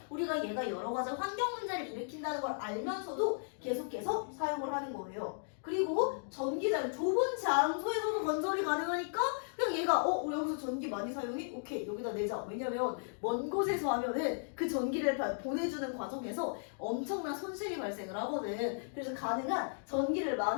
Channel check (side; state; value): right; silent; digital silence